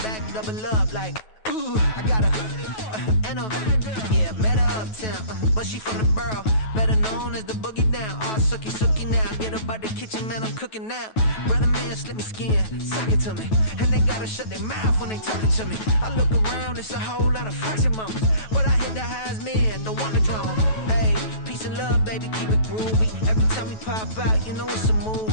double up like, ooh, I got a, and a, yeah, met her uptown, but she from the borough, better known as the boogie down. All sucky now, get up out the kitchen, man, I'm cooking now. Brother man, slip me skin, suck it to me, and they gotta shut their mouth when they talking to me. I look around, it's a whole lot of foxy mamas, but I hit the highs, man, don't want the drama. Hey, peace and love, baby, keep it groovy. Every time we pop out, you know it's a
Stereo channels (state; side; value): late; right; 9.2 ms